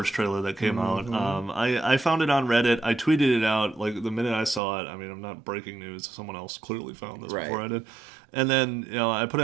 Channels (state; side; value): drops out; left; at 4.6 s